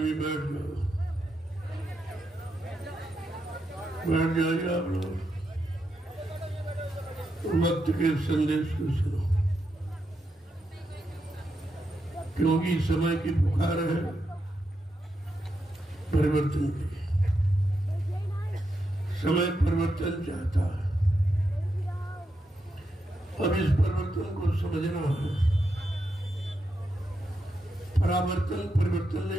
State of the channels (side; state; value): both; normal; correlation 0.84